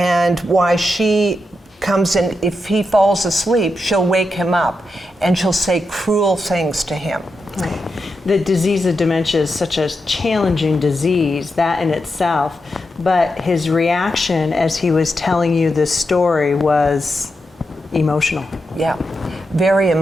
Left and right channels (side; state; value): both; normal; correlation 0.86